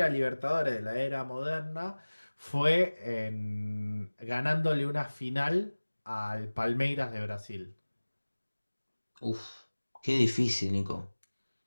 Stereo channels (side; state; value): both; inverted; correlation -1.00